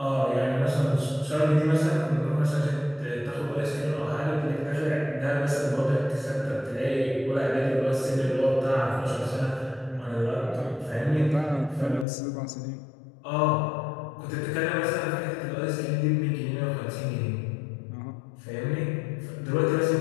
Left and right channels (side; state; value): right; drops out; at 12.1 s